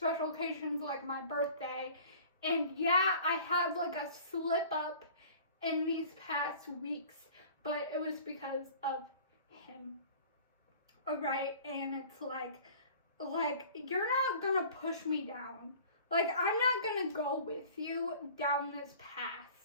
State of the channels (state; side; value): inverted; both; correlation -0.45